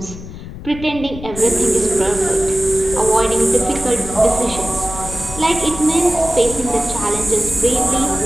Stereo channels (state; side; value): noise; left; rumble, 12 dB below the sound